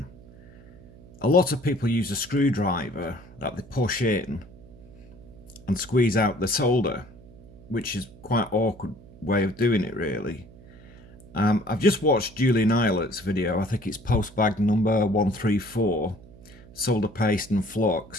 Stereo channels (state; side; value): noise; right; hum, 21 dB below the sound